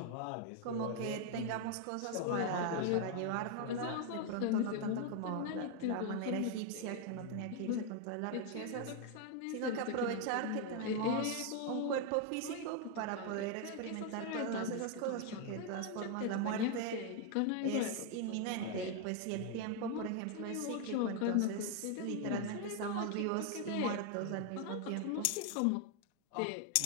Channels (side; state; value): both; different; correlation 0.01